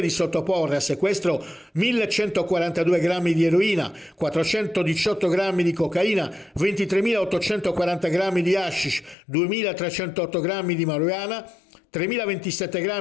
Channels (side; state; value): right; drops out; at 9.2 s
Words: di sottoporre a sequestro 1142 grammi di eroina, 418 grammi di cocaina, 23.840 grammi di hashish, 2.308 grammi di marijuana, 3.027